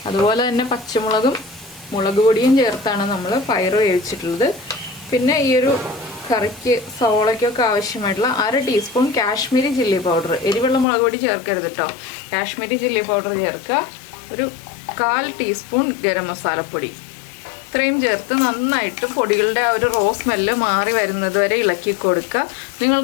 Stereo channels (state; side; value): drops out; right; at 10.9 s